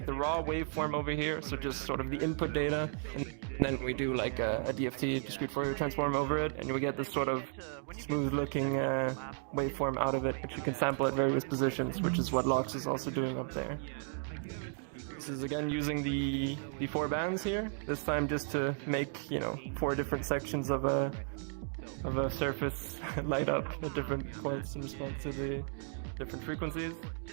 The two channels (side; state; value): left; silent; 55 dB below the other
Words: the raw waveform over here, so just sort of the input data, and then we do like a DFT, discrete Fourier transform over it, and we get this sort of smooth-looking waveform out of it, which you can sample at various positions, which is what Lox is also doing up there. This is again using the 4 bands here, this time just to make, you know, 4 different sections of a surface light up at different points in response to the different frequencies.